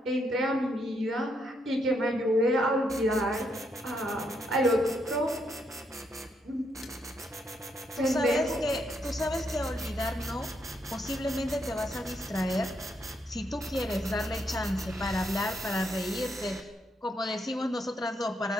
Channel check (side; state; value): both; normal; correlation 0.77